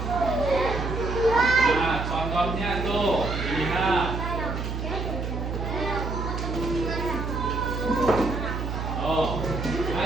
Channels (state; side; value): noise; right; hum, 4 dB below the sound